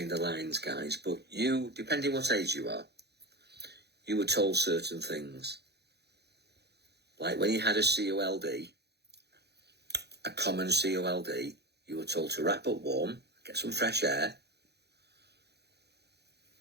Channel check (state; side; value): late; left; 0.48 ms